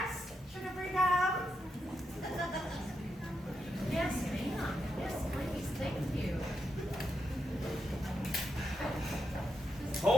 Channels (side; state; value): both; normal; correlation 0.84